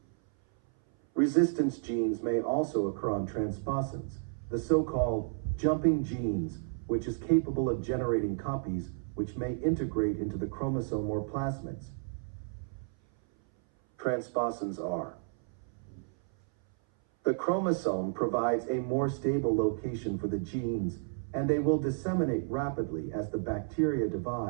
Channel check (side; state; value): left; silent; 57 dB below the other